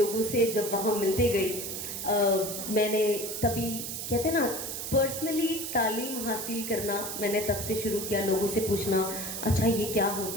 से जब वहां मिलते गई, मैंने तभी कहते ना पर्सनली तालीम हासिल करना मैंने तब से शुरू किया, लोगों से पूछना अच्छा ये क्या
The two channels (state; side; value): noise; right; hiss, 5 dB below the sound